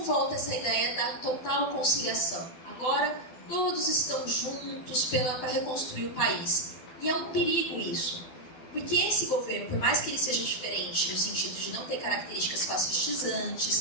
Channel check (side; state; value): right; late; 12 ms